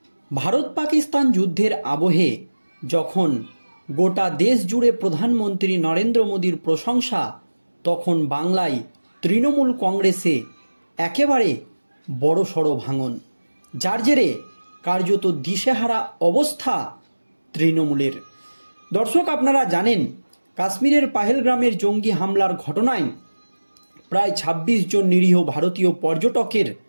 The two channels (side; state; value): both; inverted; correlation -1.00